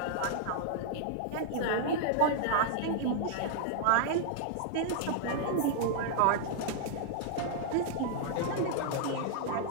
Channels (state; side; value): different; both; correlation -0.01